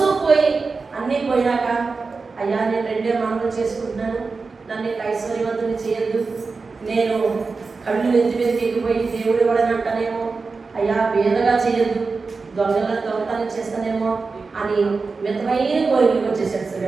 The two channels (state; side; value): quieter; left; 4.3 dB